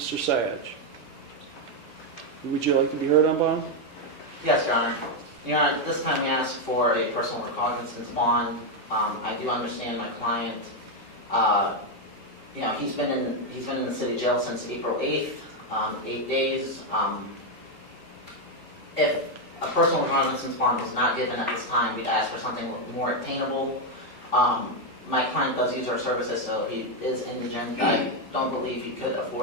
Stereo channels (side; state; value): right; late; 1.6 ms